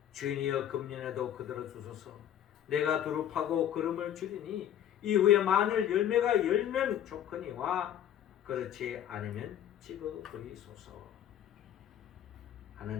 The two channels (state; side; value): quieter; right; 10.5 dB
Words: 주인이여 금년에도 그들을 주소서. 내가 두릅하고 걸음을 줄이니 이후에 만일 열매가 열면 좋거니와 그렇지 않으면 찍어버리소서